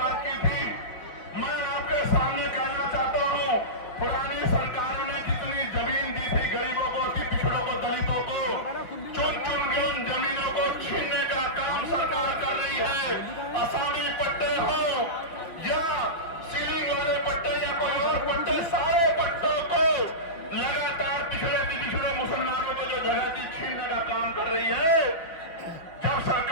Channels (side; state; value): right; late; 5.9 ms